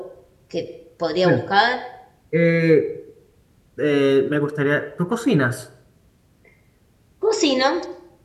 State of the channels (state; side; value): identical; both; correlation 1.00